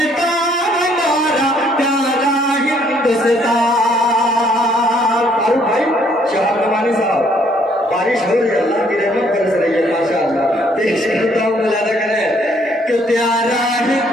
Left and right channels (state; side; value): normal; both; correlation 0.65